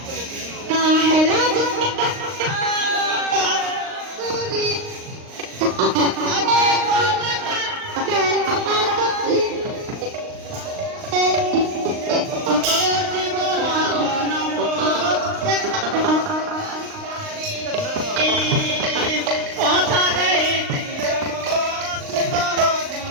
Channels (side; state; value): left; late; 39 ms